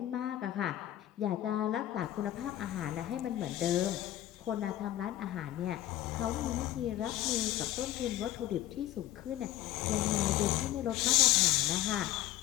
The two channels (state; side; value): quieter; right; 14.0 dB